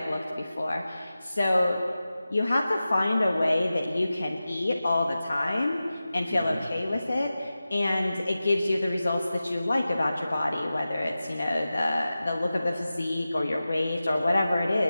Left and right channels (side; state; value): both; inverted; correlation -0.95